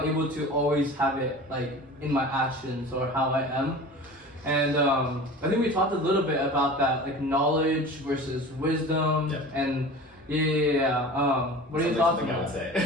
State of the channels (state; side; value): normal; both; correlation 0.37